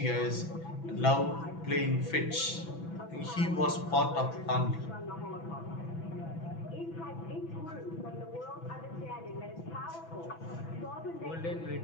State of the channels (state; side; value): late; right; 6.0 ms